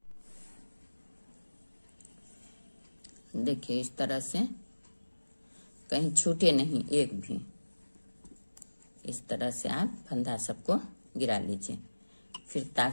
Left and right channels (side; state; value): both; inverted; correlation -1.00